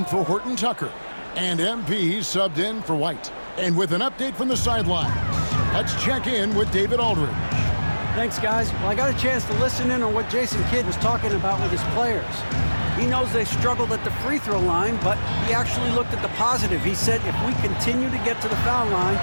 for Horton Tucker. And MP subbed in for White. And with an update from the sidelines, let's check in with David Aldridge. Thanks, guys. Well, I got a chance to listen in on what Jason Kidd was talking about with his players. He knows they struggled at the free throw line, but he actually looked at the positive. He said, if we continue to get to the foul line,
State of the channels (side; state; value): both; inverted; correlation -1.00